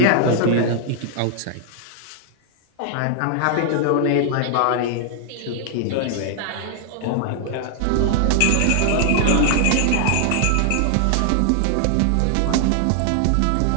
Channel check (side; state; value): both; different; correlation 0.00